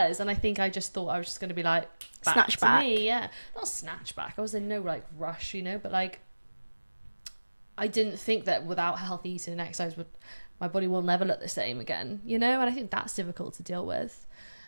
And I think I just thought I was just going to be like, back to me. Yeah. Not snatch back. I was in no like rush, you know, but like, I didn't think that without healthy eating and exercise, my body will never look the same again, you know? And I think that's difficult to deal with.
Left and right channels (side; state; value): both; inverted; correlation -1.00